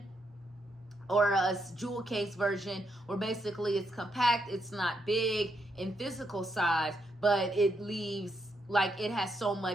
or a jewel case version, where basically it's compact, it's not big in physical size, but it leaves, like, it has so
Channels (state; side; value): normal; both; correlation 0.79